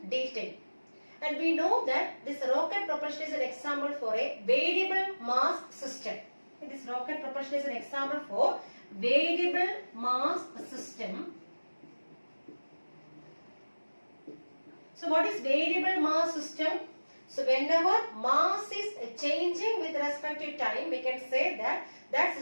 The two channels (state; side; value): inverted; both; correlation -1.00